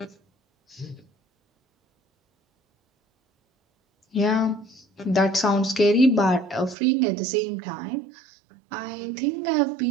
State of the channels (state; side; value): drops out; left; at 6.8 s